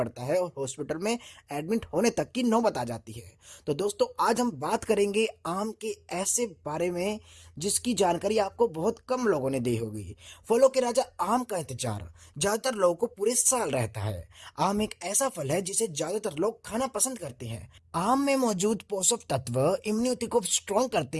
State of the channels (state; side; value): identical; both; correlation 1.00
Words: है और हॉस्पिटल में एडमिट होने तक की नौबत आ जाती है। तो दोस्तों, आज हम बात करेंगे आम के ऐसे बारे में जिसकी जानकारी आपको बहुत कम लोगों ने दी होगी। फलों के राजा आम का इंतजार ज्यादातर लोगों को पूरे साल रहता है। आम एक ऐसा फल है जिसे ज्यादातर लोग खाना पसंद करते हैं। आम में मौजूद पोषक तत्व इम्यूनिटी को स्ट्रॉन्ग करते